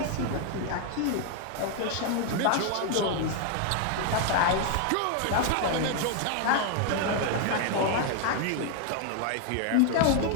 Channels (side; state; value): both; different; correlation 0.00